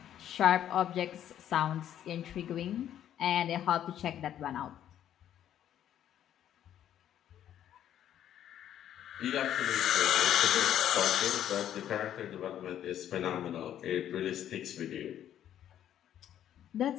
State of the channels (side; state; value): right; quieter; 10.8 dB